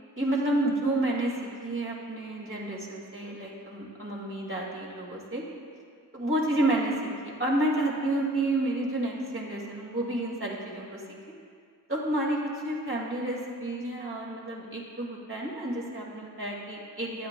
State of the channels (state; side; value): normal; both; correlation 0.52